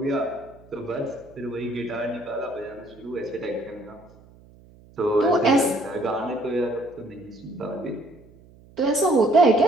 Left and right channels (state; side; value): noise; right; hum, 25 dB below the sound